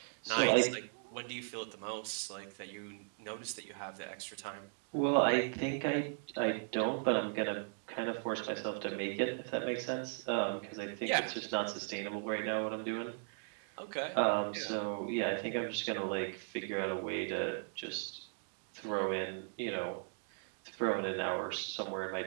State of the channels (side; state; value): left; silent; digital silence